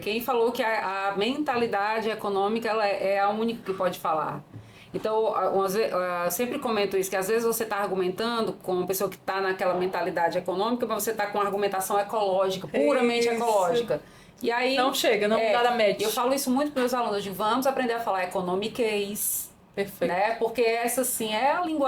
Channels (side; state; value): both; identical; correlation 1.00